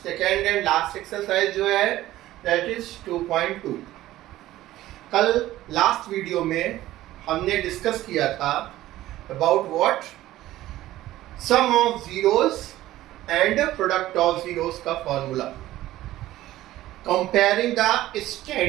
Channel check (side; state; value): left; quieter; 15.2 dB